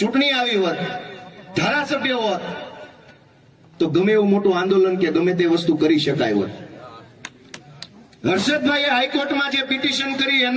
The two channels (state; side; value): identical; both; correlation 1.00